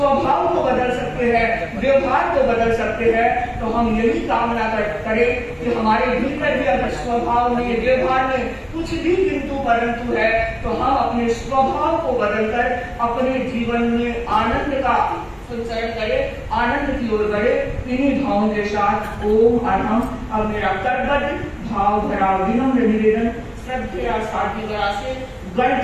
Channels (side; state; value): both; identical; correlation 1.00